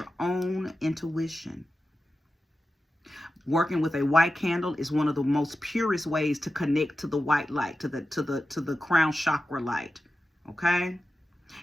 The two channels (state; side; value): normal; both; correlation 0.93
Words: own intuition. Working with a white candle is one of the most purest ways to connect to the white light, to the crown chakra light. Okay?